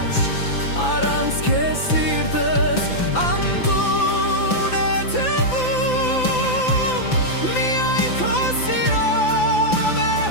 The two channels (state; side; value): late; right; 5.9 ms